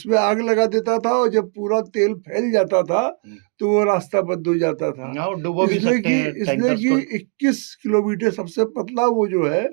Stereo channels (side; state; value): left; quieter; 39.2 dB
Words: आग लगा देता था, और जब पूरा तेल फैल जाता था तो वो रास्ता बंद हो जाता था। इसलिए कि 21 किलोमीटर सबसे पतला वो जो है